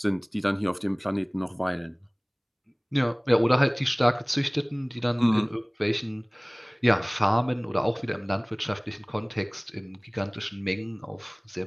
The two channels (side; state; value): both; identical; correlation 1.00